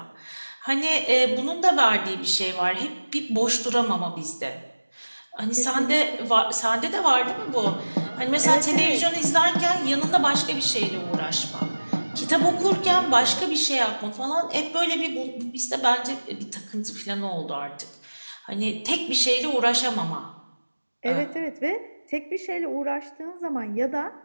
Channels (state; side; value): inverted; both; correlation -1.00